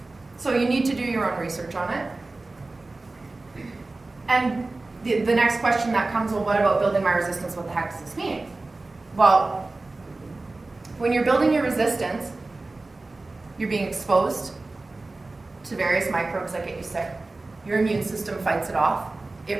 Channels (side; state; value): left; quieter; 3.2 dB